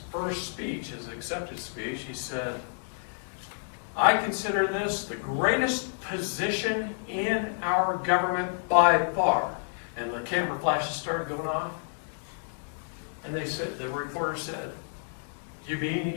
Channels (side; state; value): right; silent; digital silence